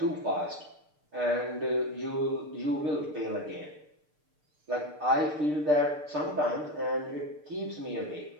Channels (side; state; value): left; late; 6.7 ms